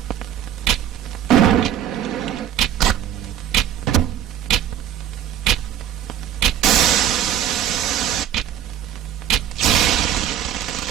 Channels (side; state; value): left; quieter; 10.4 dB